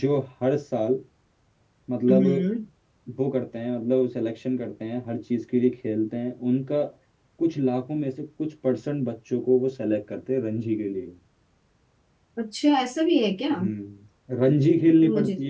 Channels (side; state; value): both; identical; correlation 1.00